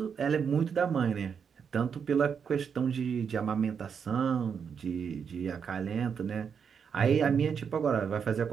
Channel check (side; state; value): left; quieter; 6.8 dB